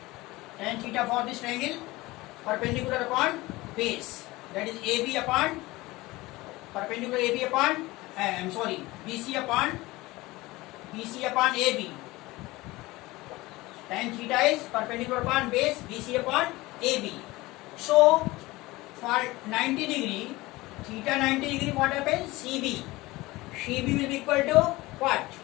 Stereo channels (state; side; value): quieter; right; 20.2 dB